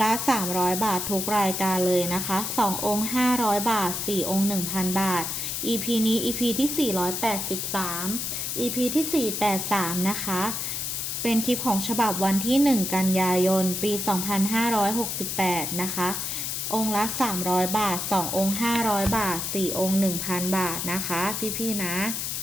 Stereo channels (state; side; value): noise; left; hiss, 3 dB below the sound